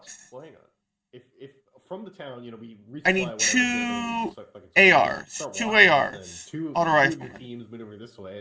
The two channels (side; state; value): both; identical; correlation 1.00